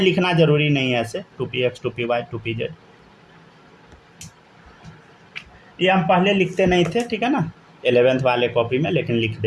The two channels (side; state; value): both; identical; correlation 1.00